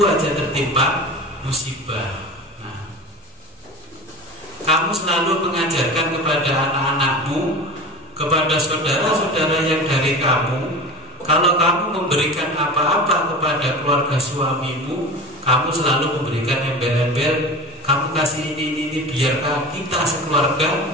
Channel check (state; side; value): normal; both; correlation 0.32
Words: aja tertimpa musibah. Kamu selalu mengajarkan kepada anak-anakmu, kepada saudara-saudara yang dari kamu, kalau kamu memberikan apa-apa kepada keluarga suamimu, kamu selalu memberikan embel-embel, kamu kasih ini biar kita